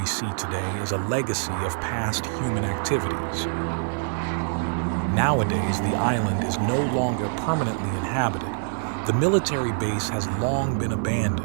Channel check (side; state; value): left; silent; 62 dB below the other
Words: see today is a legacy of past human activities. Nowadays, the island is no longer permanently inhabited. The military base has long been